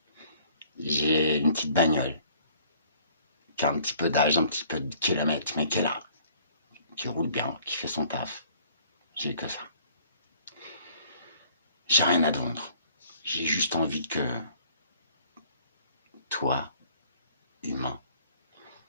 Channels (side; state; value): both; inverted; correlation -0.56